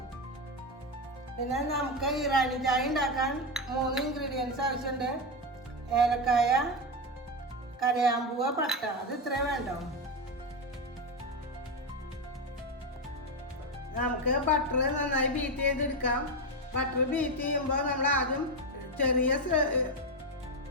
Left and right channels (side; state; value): both; normal; correlation 0.11